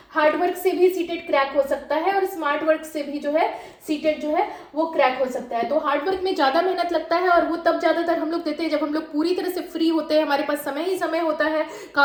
हार्ड वर्क से भी सीटेट क्रैक हो सकता है और स्मार्ट वर्क से भी जो है सीटेट जो है वो क्रैक हो सकता है। तो हार्ड वर्क में ज़्यादा मेहनत लगता है और वो तब ज़्यादातर हम लोग देते हैं जब हम लोग पूरी तरह से फ्री होते हैं, हमारे पास समय ही समय होता है,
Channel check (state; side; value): identical; both; correlation 1.00